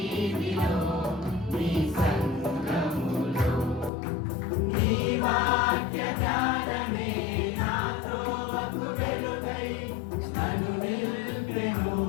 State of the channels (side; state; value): right; drops out; at 3.9 s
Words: నీ సంఘములో. నీ వాక్య జ్ఞానమే నాతో వకు వెలుగై నన్ను నిలిపెను